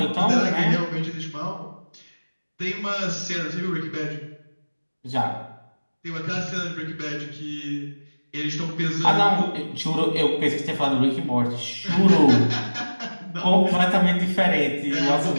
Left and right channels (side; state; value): both; inverted; correlation -1.00